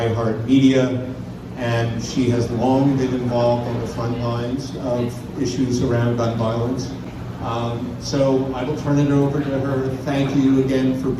and she has long been involved on the front lines of issues around gun violence. So I will turn it over to her. Thank you again for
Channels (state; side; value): identical; both; correlation 1.00